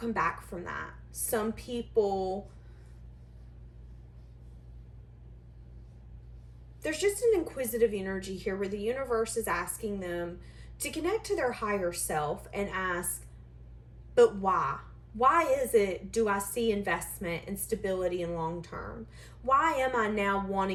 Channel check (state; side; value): identical; both; correlation 1.00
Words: back from that. Some people, there's just an inquisitive energy here where the universe is asking them to connect to their higher self and ask, but why? Why is it do I see investment and stability in long term? Why am I now